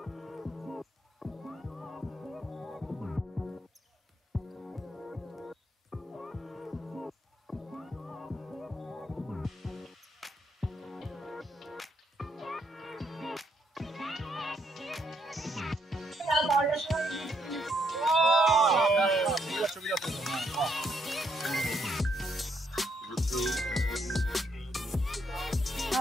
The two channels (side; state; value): both; normal; correlation 0.74